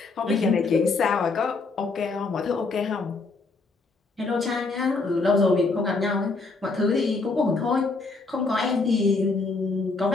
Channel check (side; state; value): right; quieter; 3.9 dB